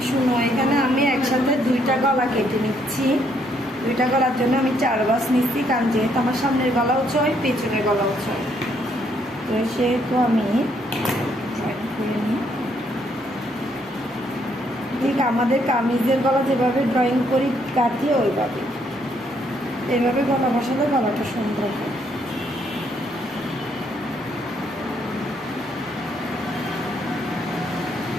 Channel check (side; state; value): both; normal; correlation 0.71